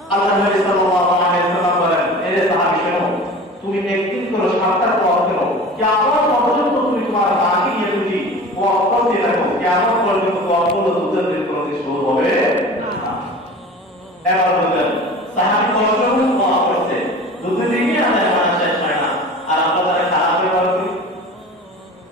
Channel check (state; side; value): normal; both; correlation 0.38